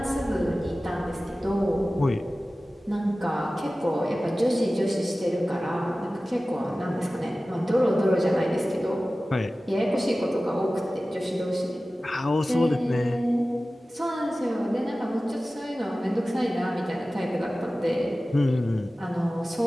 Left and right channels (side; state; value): both; normal; correlation 0.96